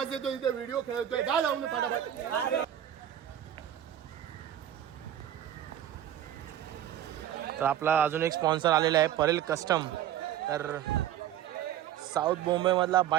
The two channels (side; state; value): left; quieter; 11.2 dB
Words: येतो इथे, व्हिडिओ खेळतोय. जा जाऊन फटाफट. तर आपला अजून एक स्पॉन्सर आलेला आहे, परेल कस्टम. तर साऊथ मुंबईमधला